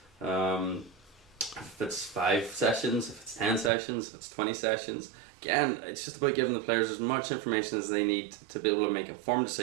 if it's 5 sessions, if it's 10 sessions, if it's 20 sessions. Again, it's just about giving the players as much information as they need to be able to make informed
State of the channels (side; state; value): left; drops out; at 3.7 s